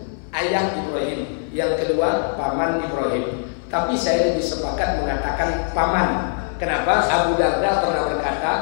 ayah Ibrahim, yang kedua paman Ibrahim. Tapi saya lebih sepakat mengatakan paman. Kenapa? Abu Darda pernah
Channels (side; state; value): right; silent; 58 dB below the other